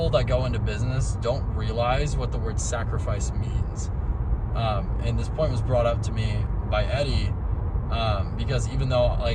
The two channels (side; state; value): both; identical; correlation 1.00